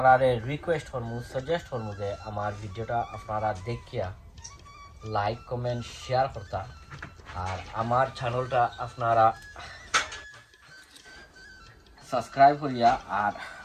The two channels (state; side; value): identical; both; correlation 1.00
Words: রিকোয়েস্ট করবো, সাজেস্ট করবো যে আমার ভিডিওটা আপনারা দেখিয়া লাইক কমেন্ট শেয়ার করতা। আর আমার চ্যানেলটা আপনারা সাবস্ক্রাইব করিয়া আর